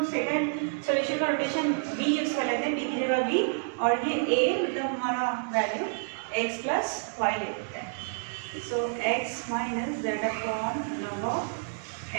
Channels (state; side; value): silent; left; digital silence